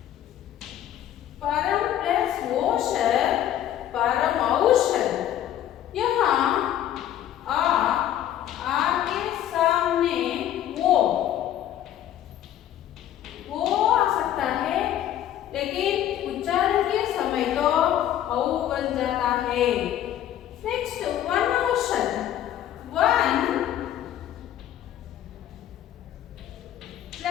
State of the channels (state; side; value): quieter; right; 11.6 dB